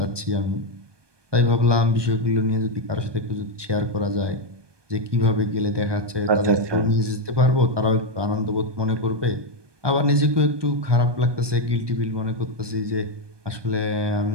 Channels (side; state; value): left; late; 1.2 ms